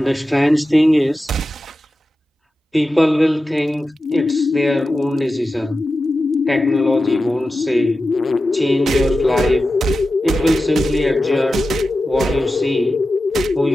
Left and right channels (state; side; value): normal; both; correlation 0.93